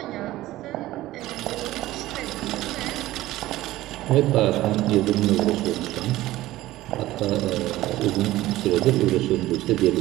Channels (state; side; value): quieter; left; 16.3 dB